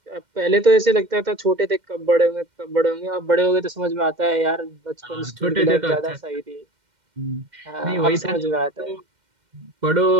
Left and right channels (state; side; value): late; left; 2.1 ms